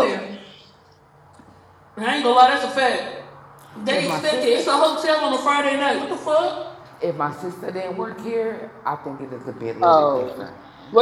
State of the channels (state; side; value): identical; both; correlation 1.00